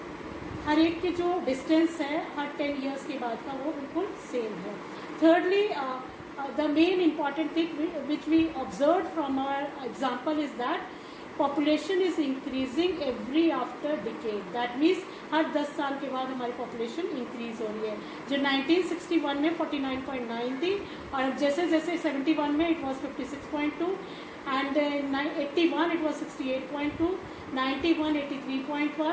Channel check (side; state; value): both; identical; correlation 1.00